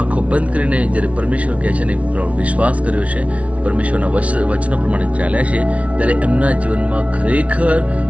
બંધ કરીને જ્યારે પરમેશ્વર કહે છે ને વિશ્વાસ કર્યો છે, પરમેશ્વરના વચનો પ્રમાણે ચાલ્યા છે, ત્યારે એમના જીવનમાં ખરેખર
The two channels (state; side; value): late; left; 0.064 ms